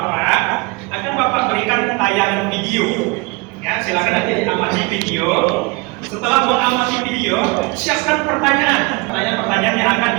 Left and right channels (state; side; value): quieter; left; 26.3 dB